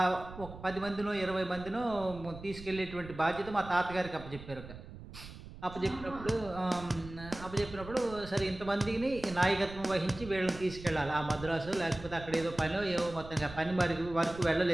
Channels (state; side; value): noise; right; rumble, 14 dB below the sound